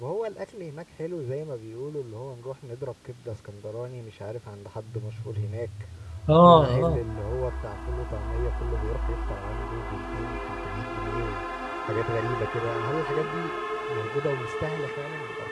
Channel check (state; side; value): identical; both; correlation 1.00